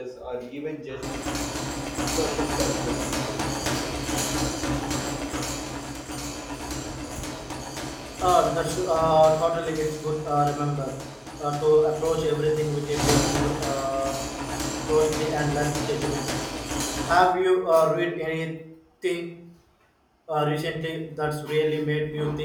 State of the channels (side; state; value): both; identical; correlation 1.00